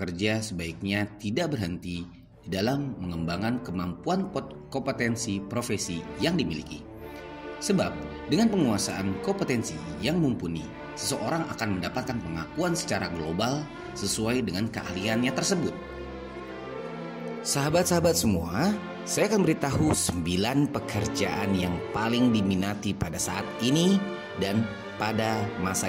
sebaiknya tidak berhenti di dalam mengembangkan kemampuan kompetensi profesi yang dimiliki. Sebab dengan penguasaan kompetensi yang mumpuni, seseorang akan mendapatkan pengakuan secara global sesuai dengan keahliannya tersebut. Sahabat-sahabat semua, saya akan beritahu 9 pekerjaan yang paling diminati pada saat ini dan pada masa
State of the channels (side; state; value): both; identical; correlation 1.00